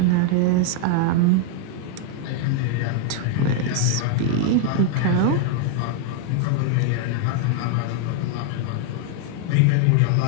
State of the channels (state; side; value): different; both; correlation 0.00